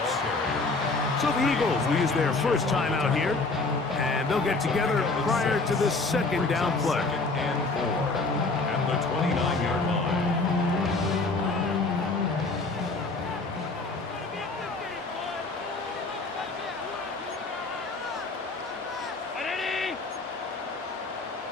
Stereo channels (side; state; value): right; quieter; 3.6 dB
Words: So the Eagles will use their first time out here. And they'll get together prior to this 2nd down play. 2nd and 4 at the 29-yard line.